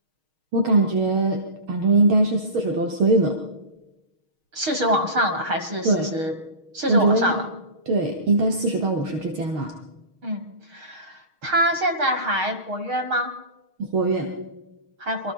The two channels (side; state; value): left; late; 6.4 ms